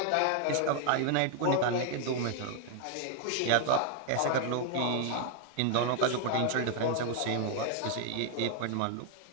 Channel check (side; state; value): both; different; correlation 0.00